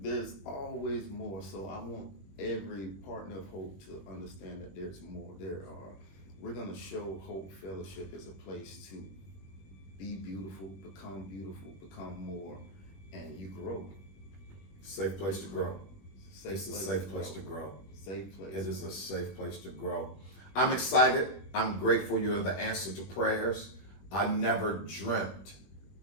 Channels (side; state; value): right; late; 21 ms